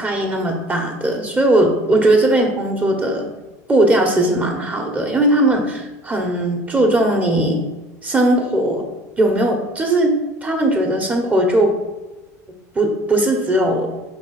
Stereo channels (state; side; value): normal; both; correlation 0.53